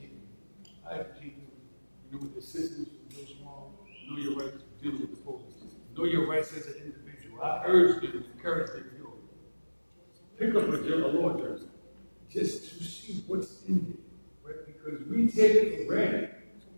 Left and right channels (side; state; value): both; inverted; correlation -1.00